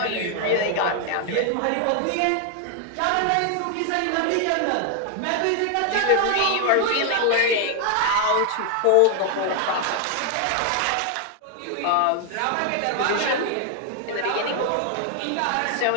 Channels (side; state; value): both; different; correlation 0.00